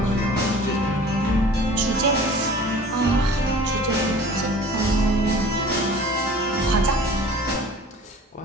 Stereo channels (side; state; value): both; normal; correlation 0.45